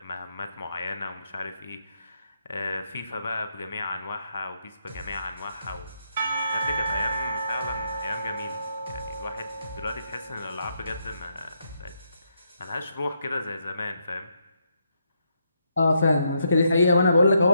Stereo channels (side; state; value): both; inverted; correlation -0.78